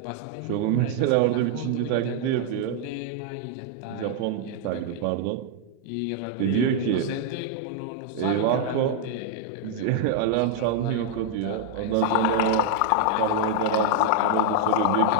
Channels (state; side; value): different; both; correlation 0.00